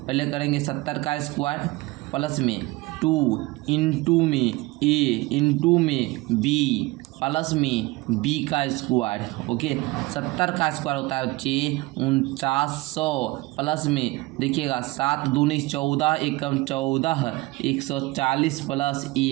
करेंगे 70 का स्क्वायर प्लस में 2 इंटू में ए इंटू में बी प्लस में बी का स्क्वायर। ओके 70 का स्क्वायर होता है बच्चे 4900 प्लस में देखिएगा 7 दूनी 14 एकम 14 140 प्लस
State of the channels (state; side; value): quieter; left; 21.3 dB